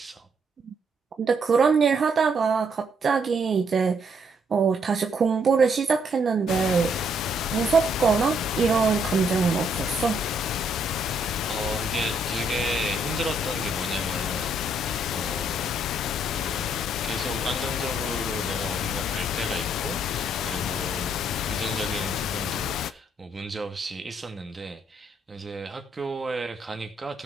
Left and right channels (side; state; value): both; normal; correlation 0.71